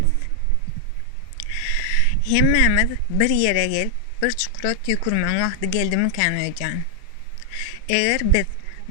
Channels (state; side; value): different; both; correlation 0.00